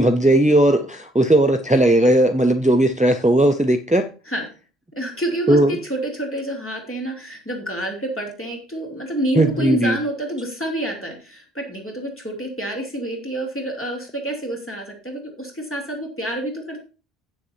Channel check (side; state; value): both; normal; correlation 0.67